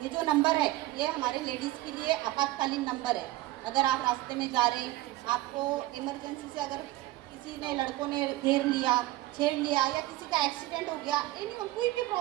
ये जो नंबर है ये हमारे लेडीज़ के लिए आपातकालीन नंबर है। अगर आप रास्ते में जा रहे हैं, आपको इमरजेंसी से अगर किसी ने, लड़कों ने घेर लिया, छेड़ लिया, या किसी का एक्सीडेंट हो गया, एनी कोई भी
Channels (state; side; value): quieter; left; 17.2 dB